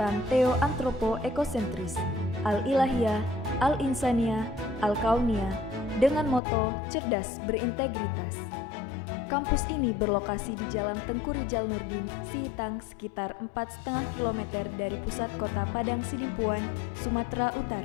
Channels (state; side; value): drops out; right; at 6.4 s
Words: Theo-Antropo-Ekosentris, Al-Ilahiyah, Al-Insaniyah, Al-Kauniyah, dengan moto cerdas berintegritas. Kampus ini berlokasi di Jalan Tengku Rijal Nurdin, Sihitang, sekitar 4,5 km dari pusat kota Padang Sidimpuan, Sumatera